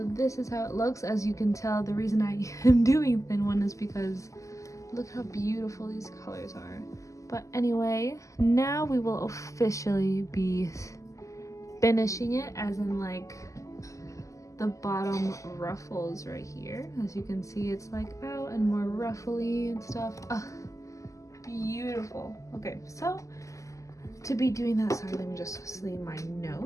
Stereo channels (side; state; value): right; late; 0.16 ms